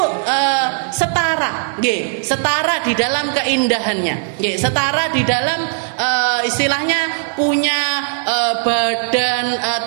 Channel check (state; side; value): silent; left; digital silence